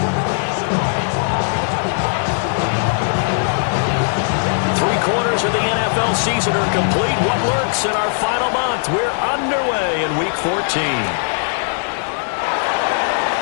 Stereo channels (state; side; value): silent; right; digital silence